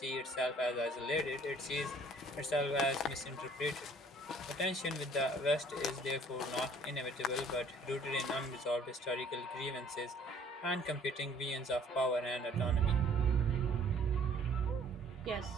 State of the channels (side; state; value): both; normal; correlation 0.56